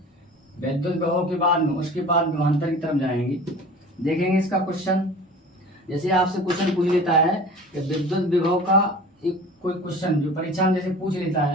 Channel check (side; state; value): both; normal; correlation 0.40